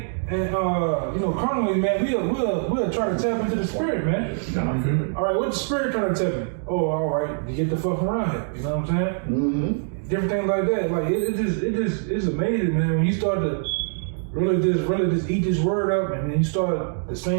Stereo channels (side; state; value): left; silent; digital silence